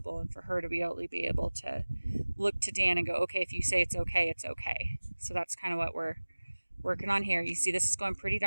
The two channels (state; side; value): inverted; both; correlation -1.00